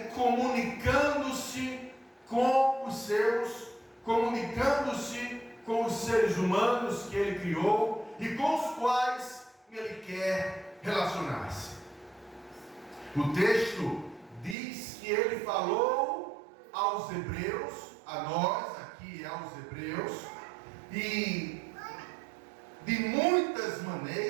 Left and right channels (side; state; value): left; drops out; at 14.6 s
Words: comunicando-se com os seus, comunicando-se com os seres humanos que ele criou e com os quais ele quer relacionar-se. O texto diz que ele falou aos hebreus, a nós aqui aos hebreus, e de muitas